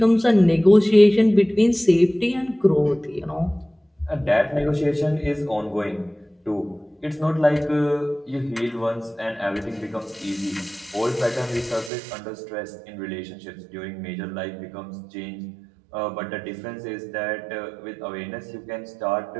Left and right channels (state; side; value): drops out; left; at 11.9 s